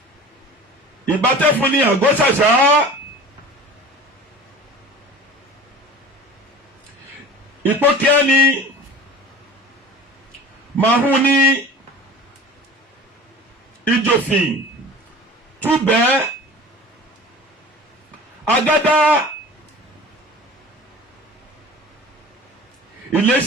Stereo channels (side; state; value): both; normal; correlation 0.40